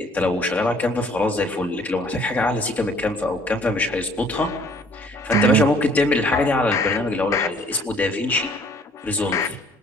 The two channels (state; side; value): normal; both; correlation 0.58